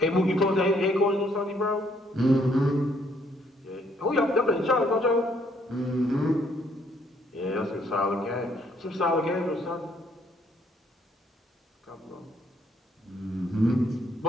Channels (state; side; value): normal; both; correlation 0.68